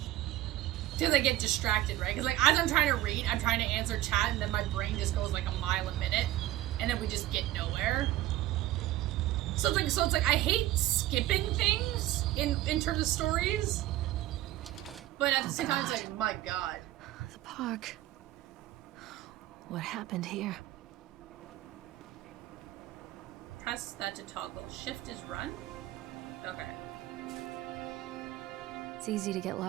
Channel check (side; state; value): left; quieter; 15.0 dB